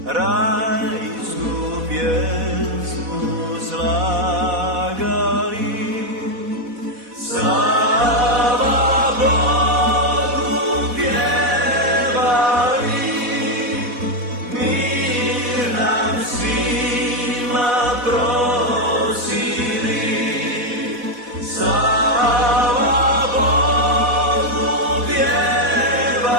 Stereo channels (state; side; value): late; left; 4.1 ms